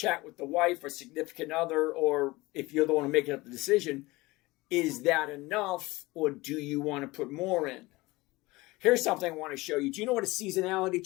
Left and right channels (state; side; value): quieter; right; 21.3 dB